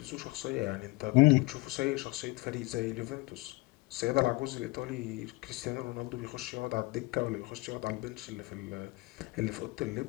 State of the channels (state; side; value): quieter; right; 23.4 dB